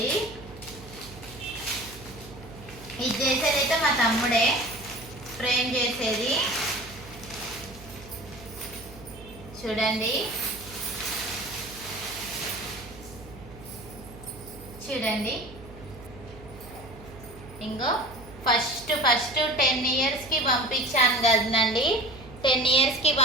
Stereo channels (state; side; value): noise; right; hum, 17 dB below the sound